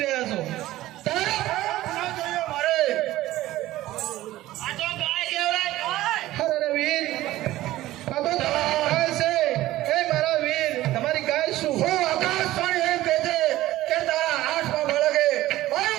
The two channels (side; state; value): left; quieter; 15.8 dB